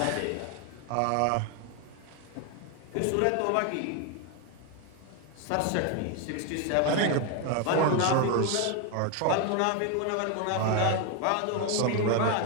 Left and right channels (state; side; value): different; both; correlation 0.01